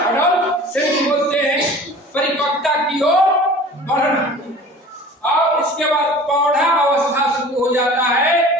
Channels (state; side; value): normal; both; correlation 0.42